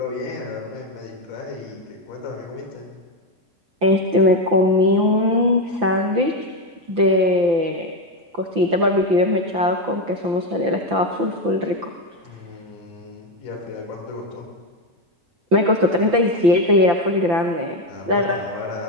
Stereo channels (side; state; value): left; late; 5.9 ms